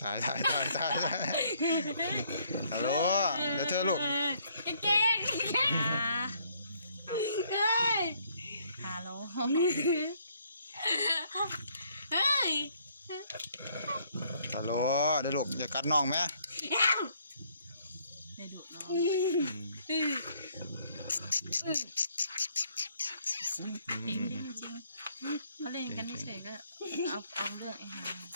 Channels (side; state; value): both; inverted; correlation -0.66